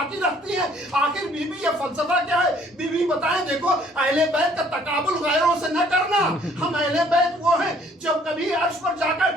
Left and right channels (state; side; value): normal; both; correlation 0.60